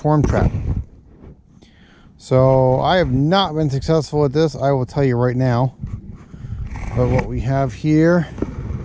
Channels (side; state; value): both; identical; correlation 1.00